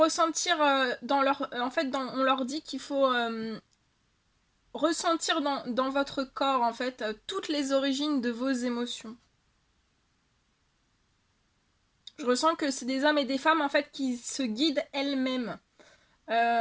dans leur... En fait, on leur dit qu'il faut ressentir dans votre corps, en fait, toutes les origines de vos émotions. Je ressens que c'est des hommes et des femmes, en fait, qui se guident elles-mêmes.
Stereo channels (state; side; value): identical; both; correlation 1.00